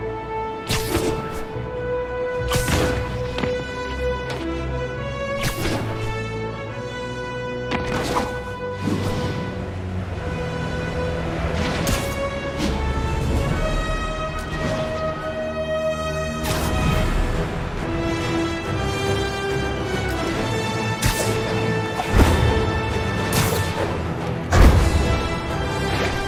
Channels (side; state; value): both; identical; correlation 1.00